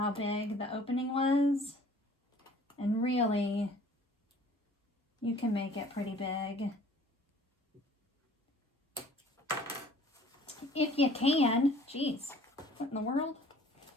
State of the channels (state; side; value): normal; both; correlation 0.52